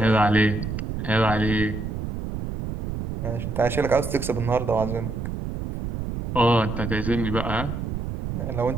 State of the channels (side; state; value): right; noise; rumble, 5 dB below the sound